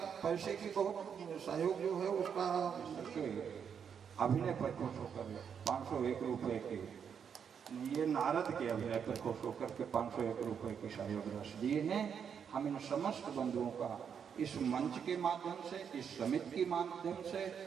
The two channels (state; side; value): quieter; left; 7.4 dB